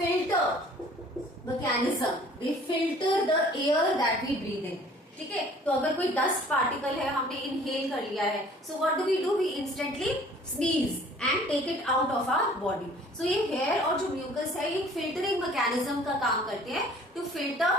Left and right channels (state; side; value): normal; both; correlation 0.52